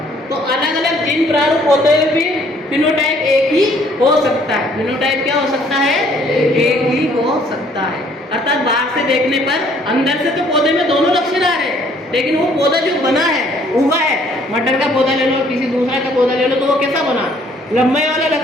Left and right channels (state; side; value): normal; both; correlation 0.61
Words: तो अलग अलग जीन प्रारूप होते हुए भी फिनोटाइप एक ही हो सकता है। फिनोटाइप क्या हो सकता है? एक ही हो सकता है। अर्थात बाहर से देखने पर, अंदर से तो पौधे में दोनों लक्षण आ रहे हैं, लेकिन वो पौधा जो बना है, उगा है, मटर का पौधा ले लो, किसी दूसरा का पौधा ले लो, तो वो कैसा बना? लंबाई वाला